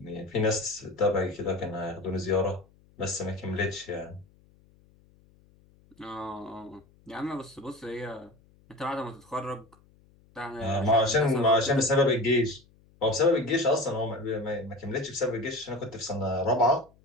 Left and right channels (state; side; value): noise; left; hum, 30 dB below the sound